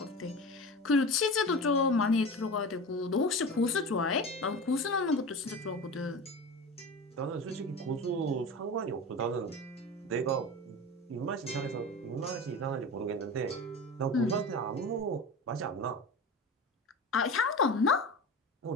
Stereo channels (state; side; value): normal; both; correlation 0.30